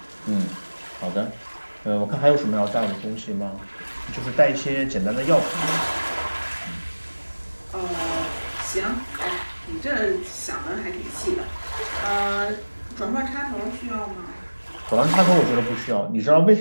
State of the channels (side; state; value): both; inverted; correlation -1.00